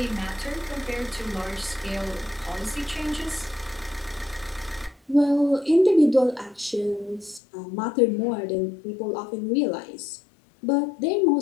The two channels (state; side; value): drops out; right; at 7.4 s